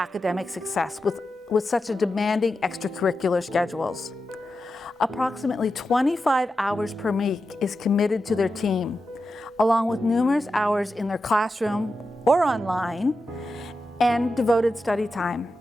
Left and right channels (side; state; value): both; normal; correlation 0.90